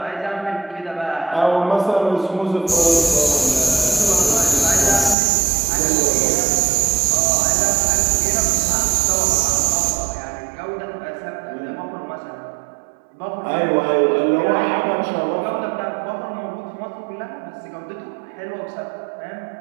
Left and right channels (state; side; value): drops out; left; at 5.2 s